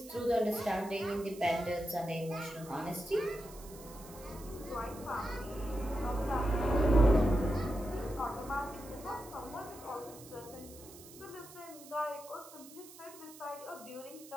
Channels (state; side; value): noise; right; hiss, 18 dB below the sound